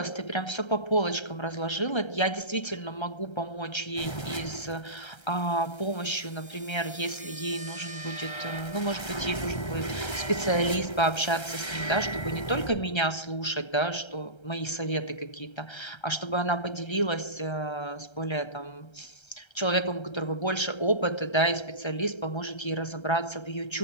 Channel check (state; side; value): late; right; 1.3 ms